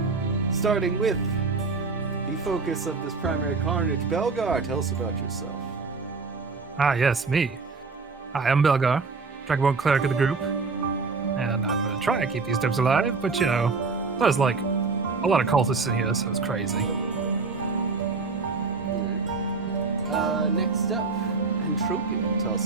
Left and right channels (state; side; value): quieter; left; 4.3 dB